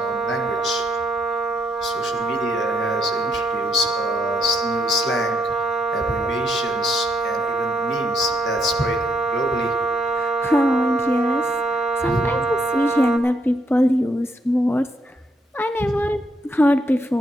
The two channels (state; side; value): normal; both; correlation 0.74